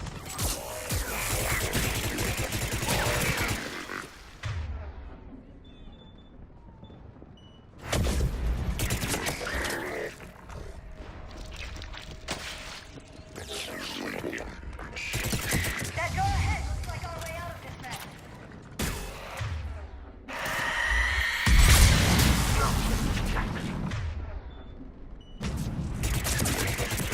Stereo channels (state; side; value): identical; both; correlation 1.00